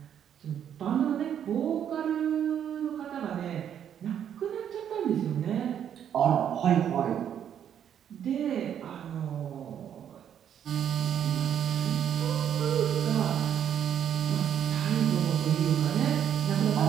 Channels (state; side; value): quieter; left; 9.3 dB